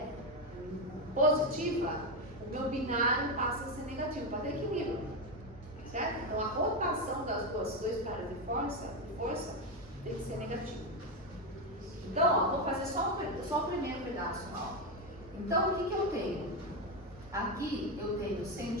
positiva, o meu binário passa a ser negativo, para ter equilíbrio. Certo? Então, a rotação das dois caras de força tem que ser negativa. Então, ó, vou fazer só o primeiro pedaço. Ó. Então, o que eu tenho? Aqui eu tenho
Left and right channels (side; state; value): both; normal; correlation 0.10